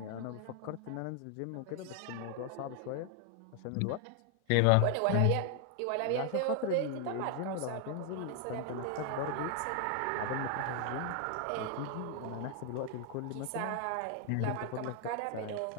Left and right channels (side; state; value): both; different; correlation 0.00